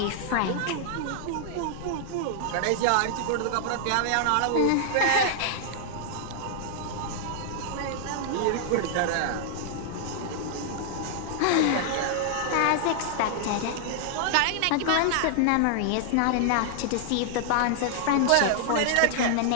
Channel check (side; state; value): both; different; correlation -0.01